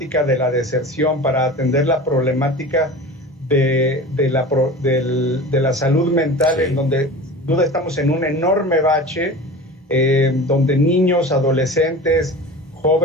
de la deserción, para atender la problemática de la salud mental, sí, en donde sin duda estamos en un enorme bache, donde niños, adolescentes,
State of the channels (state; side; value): normal; both; correlation 0.35